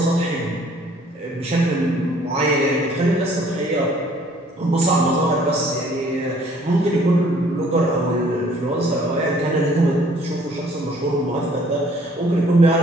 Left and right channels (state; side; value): normal; both; correlation 0.58